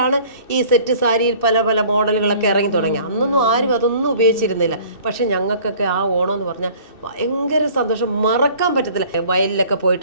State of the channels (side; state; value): right; late; 2.6 ms